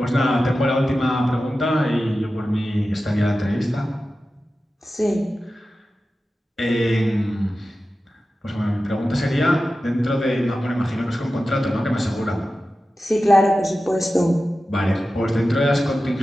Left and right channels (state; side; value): normal; both; correlation 0.93